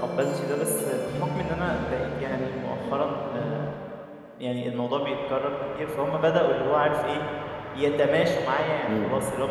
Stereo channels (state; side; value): identical; both; correlation 1.00